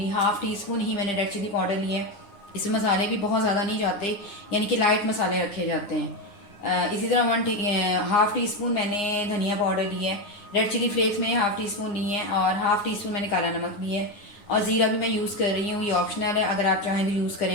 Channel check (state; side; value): late; right; 9.7 ms